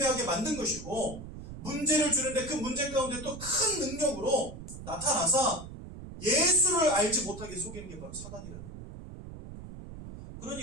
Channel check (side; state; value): right; noise; rumble, 12 dB below the sound